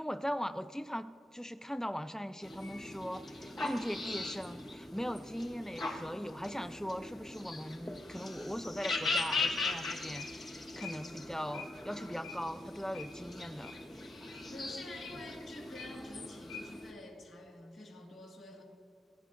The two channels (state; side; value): normal; both; correlation 0.85